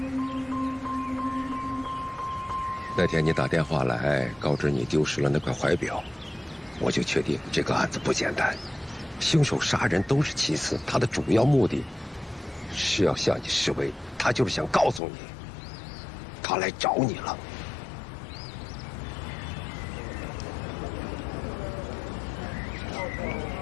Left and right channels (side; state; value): right; drops out; at 15.0 s